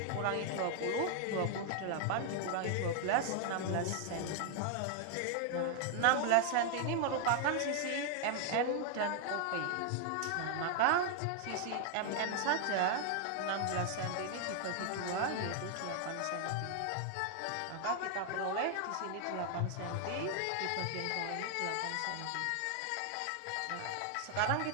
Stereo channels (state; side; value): different; both; correlation 0.00